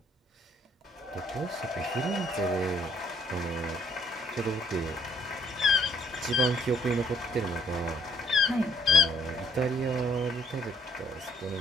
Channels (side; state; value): both; normal; correlation 0.65